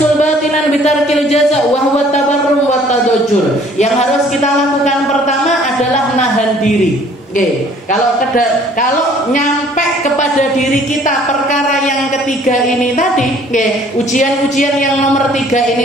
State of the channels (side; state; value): both; normal; correlation 0.56